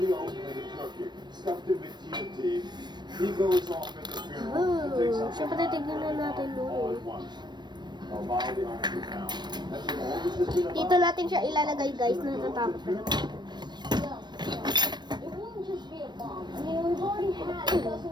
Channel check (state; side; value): late; left; 0.21 ms